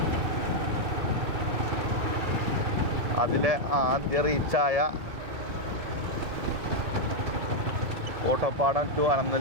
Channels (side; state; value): left; late; 2.2 ms